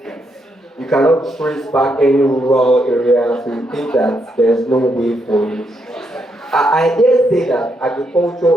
you cannot trace back any rural area, so you think that there's no way for you. I dare say that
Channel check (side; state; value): both; normal; correlation 0.79